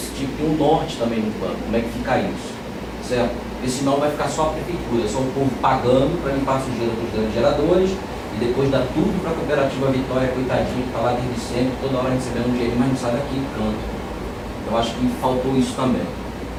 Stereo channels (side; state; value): both; identical; correlation 1.00